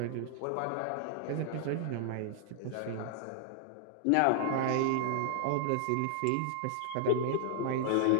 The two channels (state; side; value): different; both; correlation -0.01